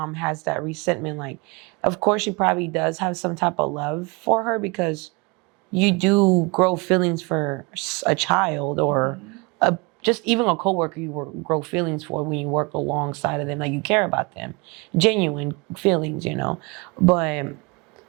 has that resentment. Like, of course, she probably does have some type of love for her because you do grow feelings for a child or just even a coworker you grow feelings for when you work alongside of them. Like you care about them, genuine feelings, you know. But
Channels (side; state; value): left; quieter; 28.6 dB